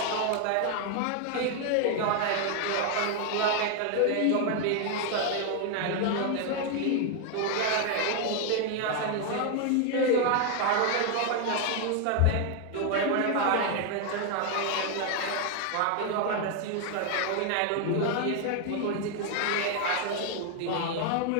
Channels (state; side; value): different; both; correlation 0.01